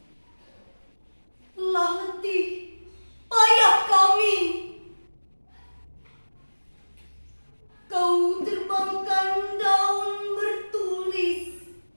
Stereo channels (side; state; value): both; inverted; correlation -1.00